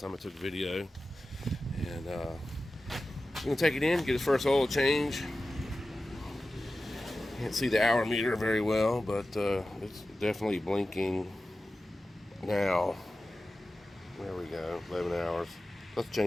I took a video, and we're gonna take it in, get his first oil change. Can't see the hour meter very well, but it's definitely blinking now. There we go, 11 hours. Let's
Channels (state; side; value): normal; both; correlation 0.94